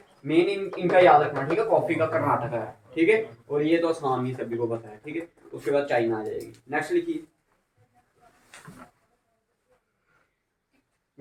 मेन इनका याद रखना। ठीक है, कॉफी का कर्नाटक है। ठीक है, और ये तो आसाम ही सभी को पता है। ठीक है, उसके बाद चाइना आ जाएगी। नेक्स्ट लिखिए,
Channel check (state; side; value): identical; both; correlation 1.00